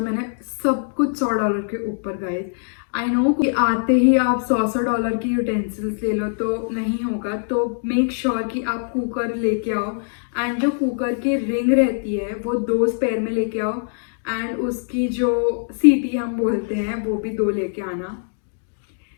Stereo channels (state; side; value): silent; right; digital silence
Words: मैंने सब कुछ $100 के ऊपर गए। आई नो कि आते ही आप $100 की यूटेंसिल्स ले लो तो नहीं होगा, तो मेक श्योर कि आप कुकर लेके आओ एंड जो कुकर की रिंग रहती है वो 2 स्पेयर में लेके आओ एंड उसकी जो सीटी हम बोलते हैं वो भी 2 लेके आना।